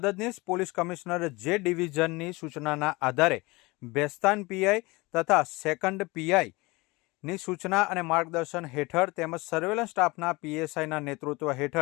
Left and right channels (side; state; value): right; quieter; 23.7 dB